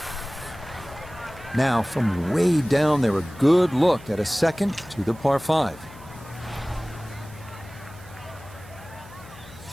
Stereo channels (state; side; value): noise; left; hum, 20 dB below the sound